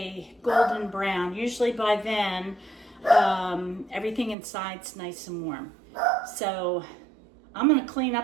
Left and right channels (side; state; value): left; drops out; at 4.4 s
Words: golden brown. Usually by then, everything inside's nice and warm. So I'm going to clean